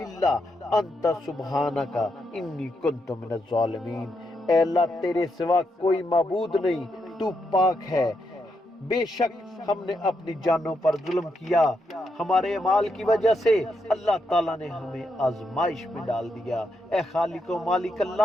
الا انت سبحانک انی کنت من الظالمین۔ اے اللہ، تیرے سوا کوئی معبود نہیں، تو پاک ہے۔ بے شک ہم نے اپنی جانوں پر ظلم کیا، ہمارے اعمال کی وجہ سے اللہ تعالیٰ نے ہمیں آزمائش میں ڈال دیا۔ اے خالق و مالک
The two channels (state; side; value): normal; both; correlation 0.81